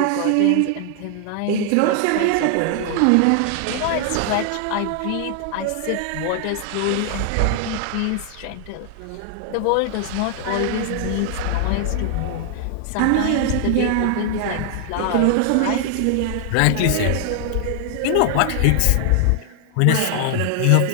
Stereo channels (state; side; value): different; both; correlation 0.00